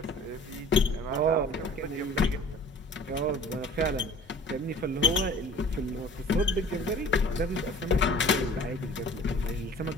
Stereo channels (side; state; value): both; normal; correlation 0.47